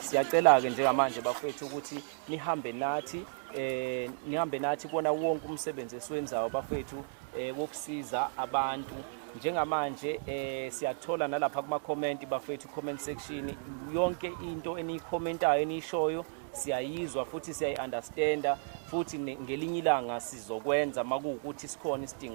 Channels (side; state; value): left; silent; digital silence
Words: siyacela ke njengamanje bafethu ukuthi nihambe nathi kubona wonke umsebenzi esiwenzayo bafethu wokusiza abantu njengamanje siyathola nalapha kuma comment bafethu comment section yonke into eniyikhomentayo enishoyo siyayizwa futhi siyayiunderstanda futhi ngelinye ilanga sizokwenza makuwukuthi sikhona